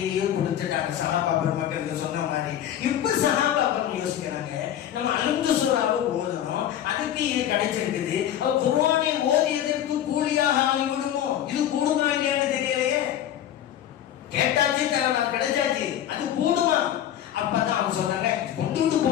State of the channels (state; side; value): quieter; right; 11.0 dB